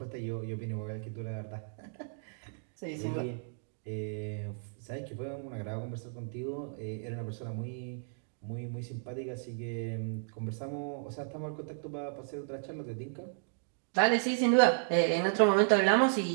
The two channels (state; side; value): silent; left; digital silence